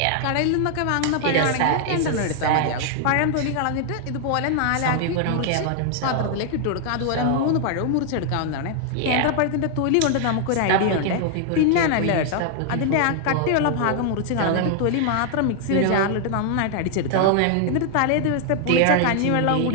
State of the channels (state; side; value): different; both; correlation 0.00